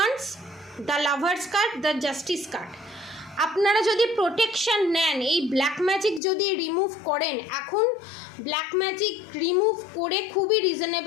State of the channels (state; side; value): drops out; right; at 6.2 s